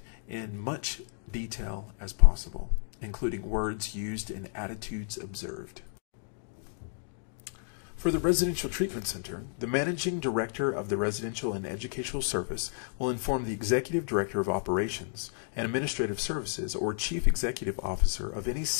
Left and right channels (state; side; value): silent; right; digital silence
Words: in much detail as possible, including words used and attitudes observed. For the Residential Treatment Center, the Managing Director of the Residential and Educational Service will inform the Executive Director of Operations and Administrative Services or Chief Executive Officer of any